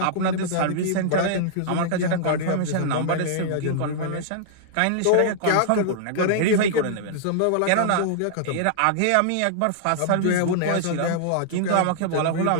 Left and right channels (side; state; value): both; different; correlation -0.01